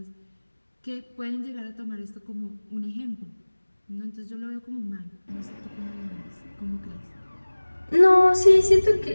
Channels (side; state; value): both; inverted; correlation -1.00